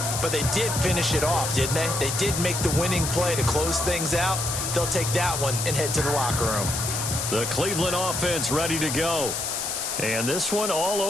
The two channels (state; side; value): noise; left; hiss, 3 dB below the sound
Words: but they did finish it off, didn't they? They did make the winning play to close things out. They'll take that one and head to the locker room. The Cleveland offense ready to go. And this one all